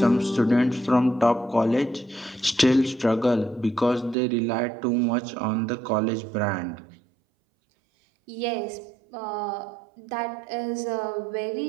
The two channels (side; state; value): left; drops out; at 4.2 s